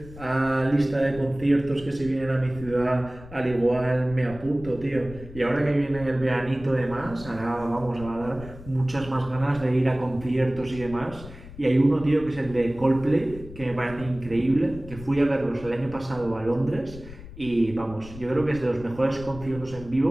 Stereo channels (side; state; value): left; noise; rumble, 16 dB below the sound